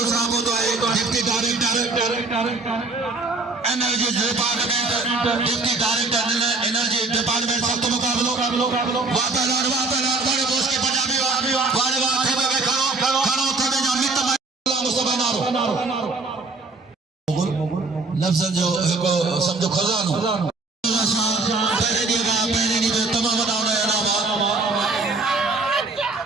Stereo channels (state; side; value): quieter; left; 3.6 dB